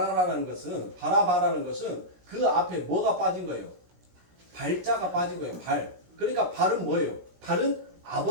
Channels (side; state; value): left; late; 17 ms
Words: 것은 그 앞에 뭐가 빠진 거예요? 발자가 빠진 거예요. 발. 그러니까 발은 뭐예요? 발은